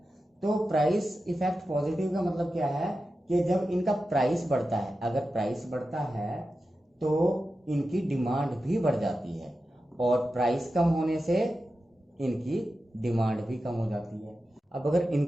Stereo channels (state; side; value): normal; both; correlation 0.92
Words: तो प्राइस इफेक्ट पॉजिटिव का मतलब क्या है कि जब इनका प्राइस बढ़ता है, अगर प्राइस बढ़ता है तो इनकी डिमांड भी बढ़ जाती है, और प्राइस कम होने से इनकी डिमांड भी कम हो जाती है। अब अगर